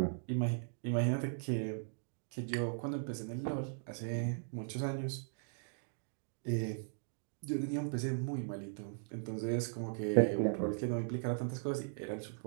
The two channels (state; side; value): silent; left; digital silence